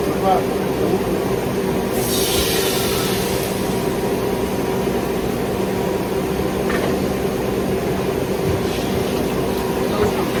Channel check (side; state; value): both; identical; correlation 1.00